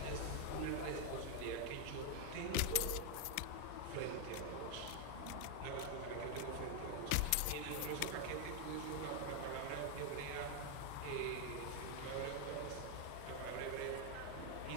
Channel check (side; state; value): both; different; correlation 0.00